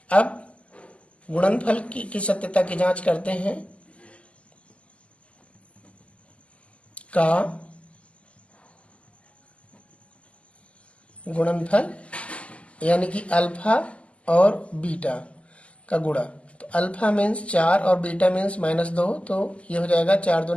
अब गुणनफल की सत्यता की जांच करते हैं। का गुणनफल यानी कि अल्फा और बीटा का गुणा। तो अल्फा मीन्स 4 और बीटा मीन्स माइनस 2, तो ये हो जाएगा 4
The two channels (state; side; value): late; right; 0.059 ms